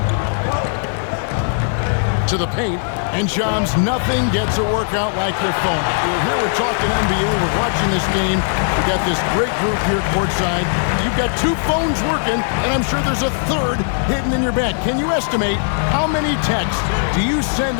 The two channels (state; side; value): silent; right; digital silence